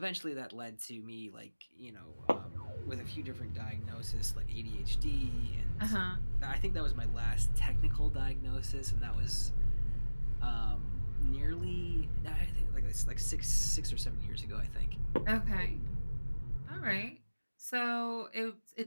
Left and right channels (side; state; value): both; inverted; correlation -1.00